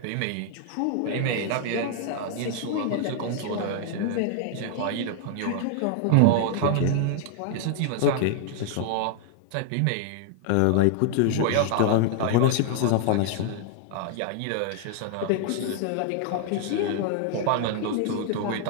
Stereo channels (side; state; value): both; different; correlation 0.00